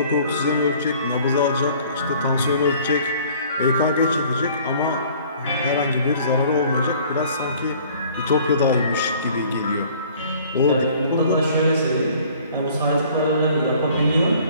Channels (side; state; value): both; inverted; correlation -0.53